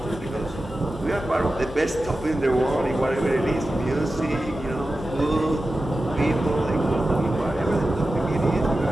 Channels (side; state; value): both; normal; correlation 0.93